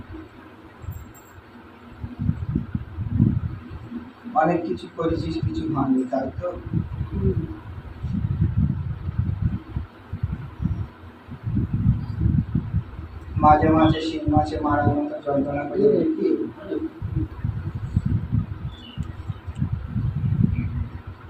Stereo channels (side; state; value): both; identical; correlation 1.00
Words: অনেক কিছু করেছিস, কিছু হয়নি, তাই তো? মাঝে মাঝে শিং মাছে মারার মতো যন্ত্রণা করে দেখি।